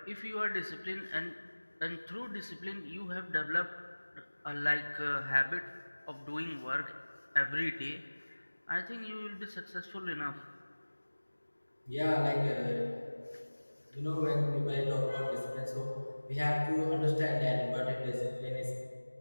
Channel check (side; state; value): both; inverted; correlation -1.00